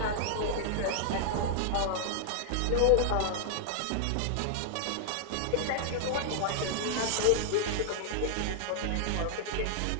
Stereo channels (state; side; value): different; both; correlation -0.01